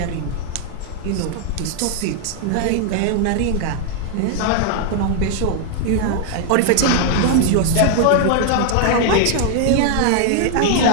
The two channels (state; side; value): different; both; correlation 0.00